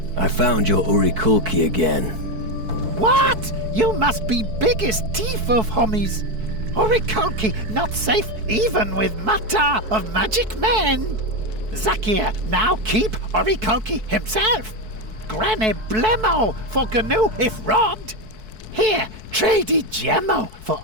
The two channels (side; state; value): left; late; 4.6 ms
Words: I found your Urikulki again. What? You must be biggest thief of homies. Urikulki not safe even with Mata of Magic Men. Zakir now keep Urikulki himself. Granny Blemo for Gnu if robbed. Here, trade Gemmo for